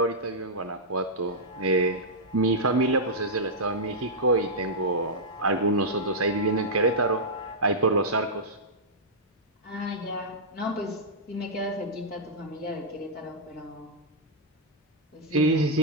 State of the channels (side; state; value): both; normal; correlation -0.09